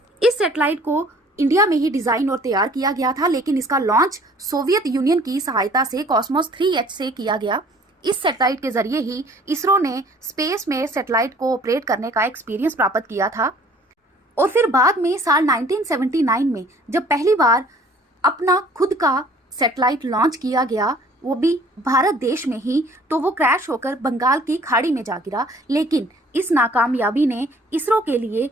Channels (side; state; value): both; normal; correlation 0.54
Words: इस सैटेलाइट को इंडिया में ही डिजाइन और तैयार किया गया था लेकिन इसका लॉन्च सोवियत यूनियन की सहायता से कॉस्मोस 3H से किया गया। इस सैटेलाइट के जरिए ही इसरो ने स्पेस में सैटेलाइट को ऑपरेट करने का एक्सपीरियंस प्राप्त किया था। और फिर बाद में साल 1979 में जब पहली बार अपना खुद का सैटेलाइट लॉन्च किया गया, वो भी भारत देश में ही, तो वो क्रैश होकर बंगाल की खाड़ी में जा गिरा। लेकिन इस नाकामयाबी ने इसरो के लिए